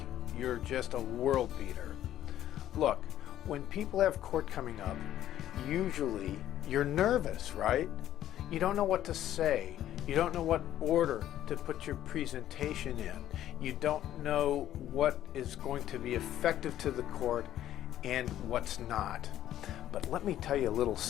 you're just a world beater. Look, when people have court coming up, usually you're nervous, right? You don't know what to say. You don't know what order to put your presentation in. You don't know what is going to be effective to the court and what's not. But let me tell you a little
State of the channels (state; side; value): quieter; right; 12.2 dB